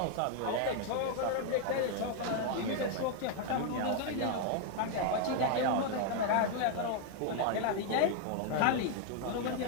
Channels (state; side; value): different; both; correlation 0.00